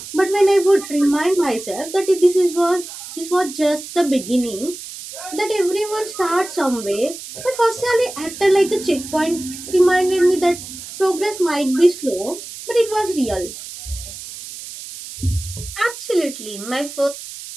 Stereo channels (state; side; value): noise; right; hiss, 12 dB below the sound